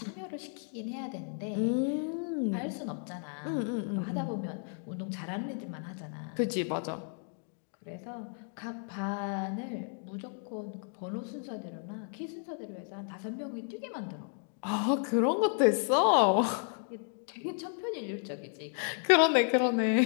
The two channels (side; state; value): right; silent; 56 dB below the other